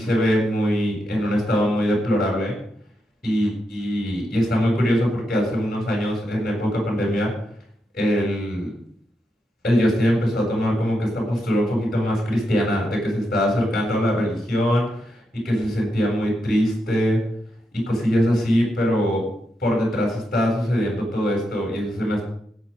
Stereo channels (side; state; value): both; normal; correlation 0.84